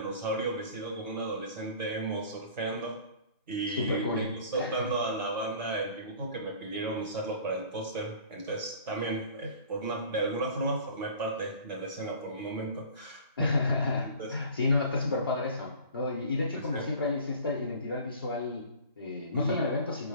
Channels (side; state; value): both; inverted; correlation -0.45